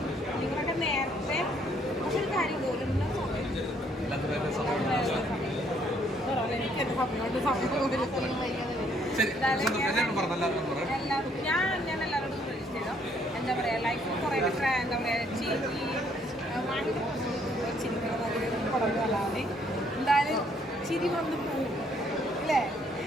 നിങ്ങളൊക്കെ നേരത്തെ പക്ഷെ ഒരു കാര്യം പോലും എനിക്ക് എന്റെ സമയമുണ്ട്. ഞാൻ എല്ലാവരോടും സജസ്റ്റ് ചെയ്തോ. എന്താ പറയാ, ലൈഫ് കുറേ എന്താ പറയാ ചിരിക്കുന്നത് പടങ്ങളല്ലാതെ എന്തായാലും ചിരി വന്ന് പോകും അല്ലേ.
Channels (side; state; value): both; normal; correlation 0.67